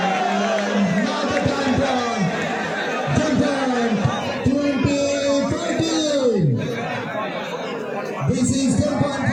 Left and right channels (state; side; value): identical; both; correlation 1.00